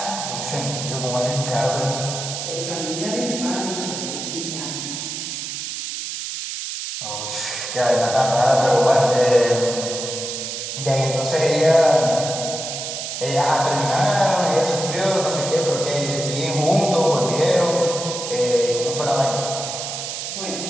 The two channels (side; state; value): right; noise; hiss, 6 dB below the sound